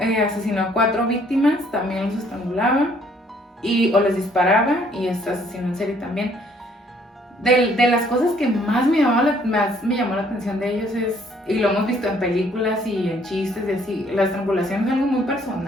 asesinó a 4 víctimas, también los estrangulaba o les disparaba, y es asesino en serie también. De las cosas que más me llamó la atención de ellos y lo hemos visto en películas y en chistes y así, la estrangulación es algo muy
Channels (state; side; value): normal; both; correlation 0.63